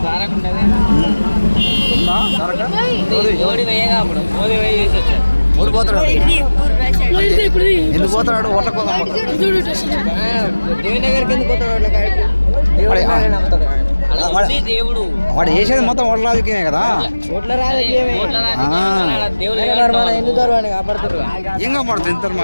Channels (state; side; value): inverted; both; correlation -1.00